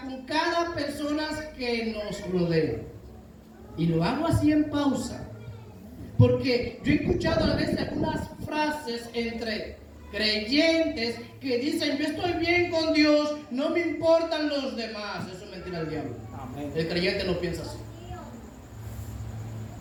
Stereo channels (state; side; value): identical; both; correlation 1.00